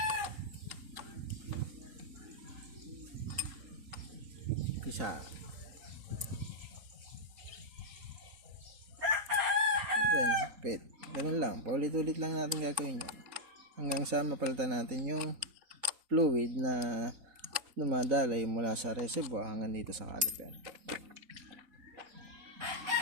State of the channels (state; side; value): late; left; 3.9 ms